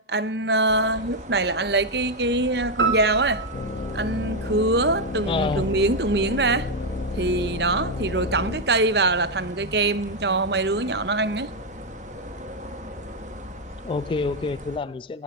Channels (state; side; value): normal; both; correlation 0.03